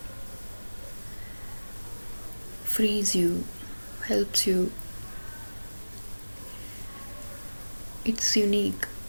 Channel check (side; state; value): both; inverted; correlation -1.00